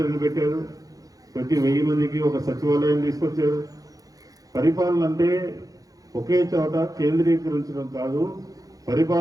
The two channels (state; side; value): late; left; 0.17 ms